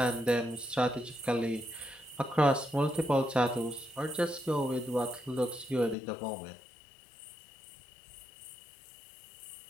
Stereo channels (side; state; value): right; drops out; at 6.0 s